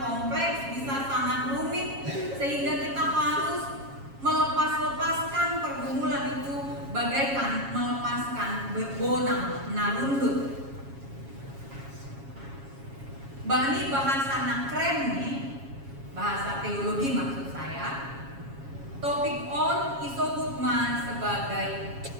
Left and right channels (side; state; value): left; late; 7.3 ms